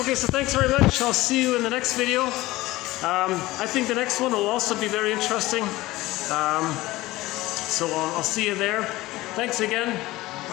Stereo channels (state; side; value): quieter; right; 18.4 dB